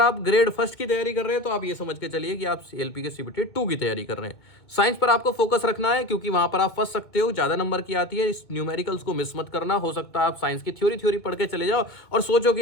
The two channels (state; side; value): late; right; 2.0 ms